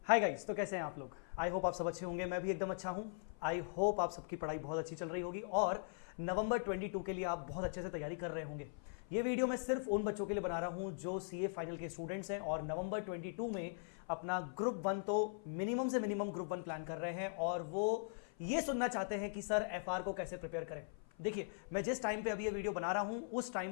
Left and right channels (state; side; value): silent; right; 51 dB below the other